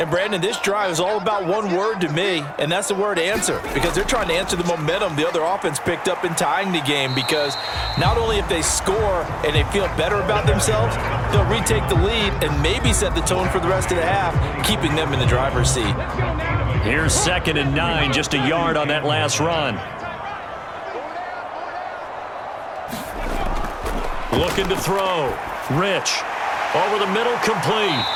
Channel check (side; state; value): both; identical; correlation 1.00